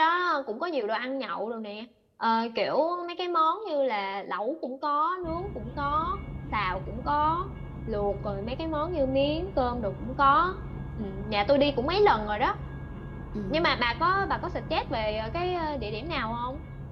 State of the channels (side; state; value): both; identical; correlation 1.00